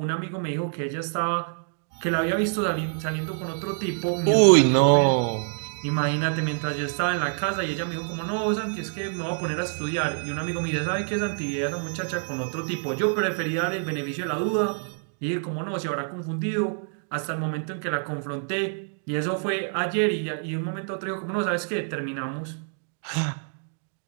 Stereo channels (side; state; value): left; silent; 61 dB below the other